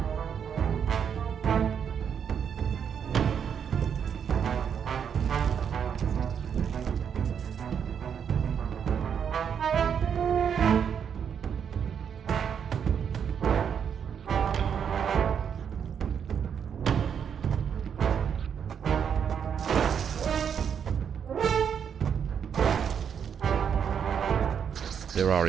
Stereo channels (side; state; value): left; quieter; 7.7 dB